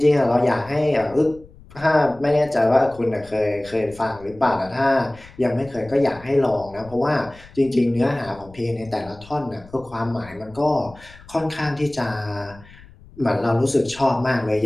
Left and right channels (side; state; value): left; noise; rumble, 22 dB below the sound